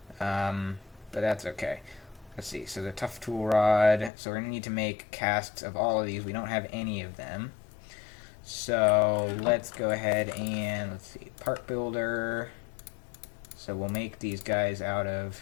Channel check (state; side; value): drops out; right; at 4.1 s